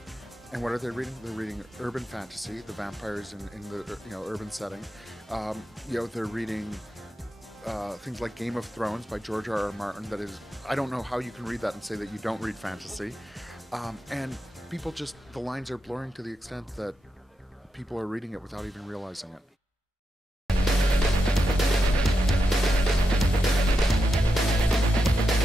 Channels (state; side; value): normal; both; correlation 0.86